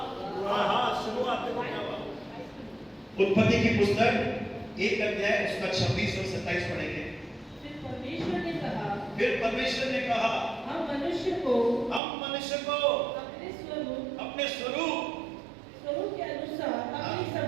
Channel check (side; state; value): left; drops out; at 12.0 s